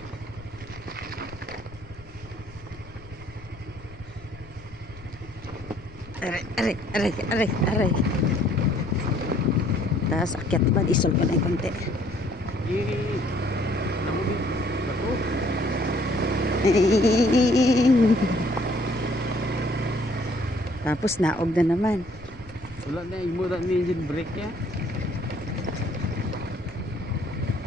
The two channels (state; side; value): noise; left; rumble, 19 dB below the sound